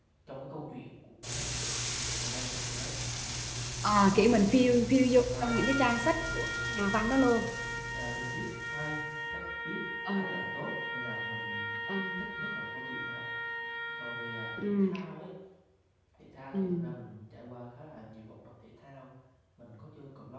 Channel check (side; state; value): both; identical; correlation 1.00